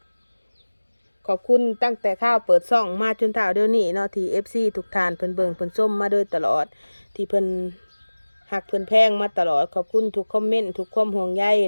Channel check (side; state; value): both; inverted; correlation -1.00